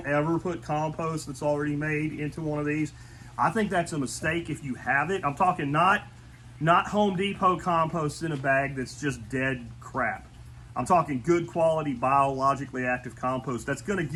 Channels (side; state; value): both; identical; correlation 1.00